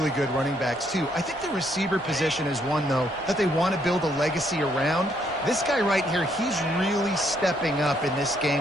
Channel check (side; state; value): both; normal; correlation 0.72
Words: good running backs, too. I think the receiver position is one, though, that they want to build a legacy around. This guy right here, he's really stepping up in this